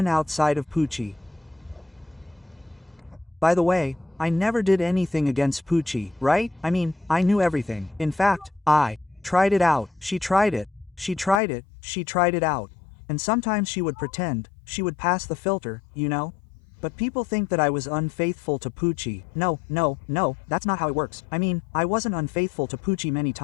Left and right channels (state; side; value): drops out; right; at 11.4 s